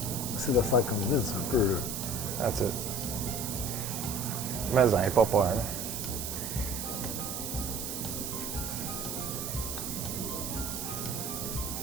C'est de faire comme Vince un peu. Là. That's it. Mais ça n'est pas peur, là.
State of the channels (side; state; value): right; noise; hiss, 5 dB below the sound